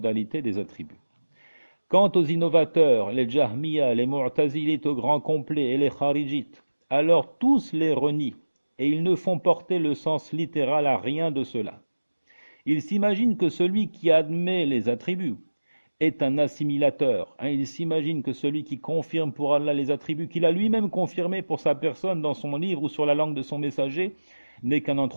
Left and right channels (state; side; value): inverted; both; correlation -1.00